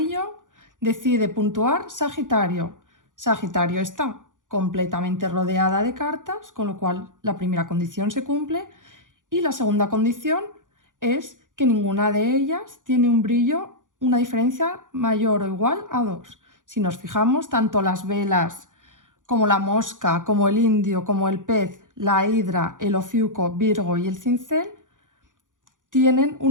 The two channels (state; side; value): late; left; 0.88 ms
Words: decide puntuar Sagitario. Sagitario está completamente rodeada de cartas, con lo cual la primera condición se cumple y la segunda condición es que ninguna de ellas tiene un brillo, una diferencia mayor o igual a 2. Si nos fijamos, tanto las velas como la mosca, como el indio, como el pez, la hidra, el ofiuco, Virgo y el cincel tienen